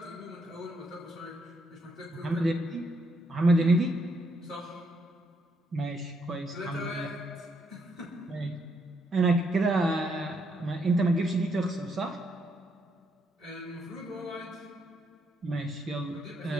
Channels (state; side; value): normal; both; correlation 0.75